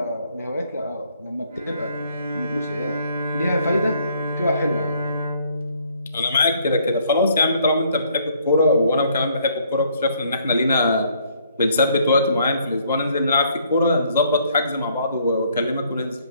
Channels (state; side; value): inverted; both; correlation -0.66